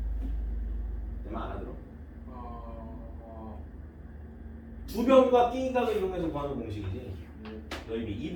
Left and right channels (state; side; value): identical; both; correlation 1.00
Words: 내 말 알아들어? 두 변과 띵각을 이용해서 구하는 공식이지. 넓이